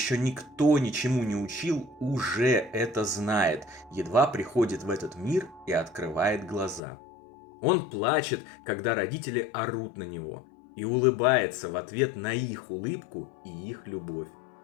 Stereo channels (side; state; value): right; drops out; at 6.8 s